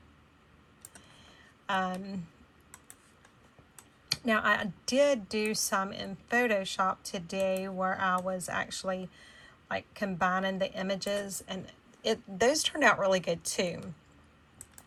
Now I did do some in Photoshop today where I was actually like combining the images, and those turned out really good too.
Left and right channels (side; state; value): both; identical; correlation 1.00